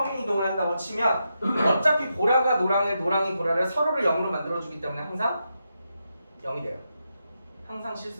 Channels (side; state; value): both; inverted; correlation -0.85